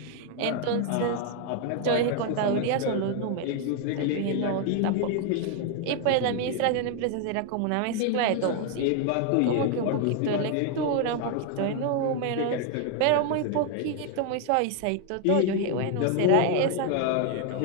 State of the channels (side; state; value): both; different; correlation 0.00